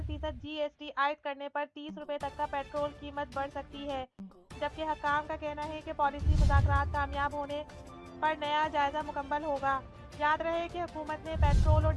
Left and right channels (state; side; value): identical; both; correlation 1.00